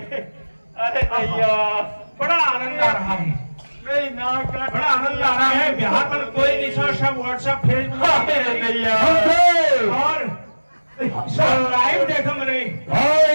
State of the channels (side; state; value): both; inverted; correlation -1.00